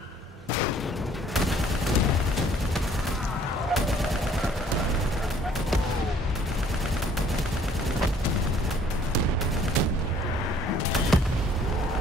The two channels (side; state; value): both; normal; correlation 0.59